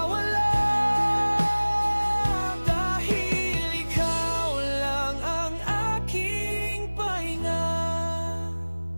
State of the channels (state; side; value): inverted; both; correlation -1.00